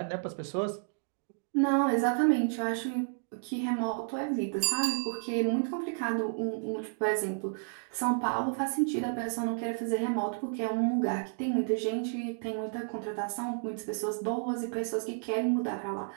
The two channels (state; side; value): silent; left; digital silence